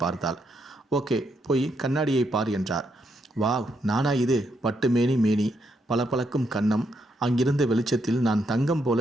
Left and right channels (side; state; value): both; normal; correlation 0.78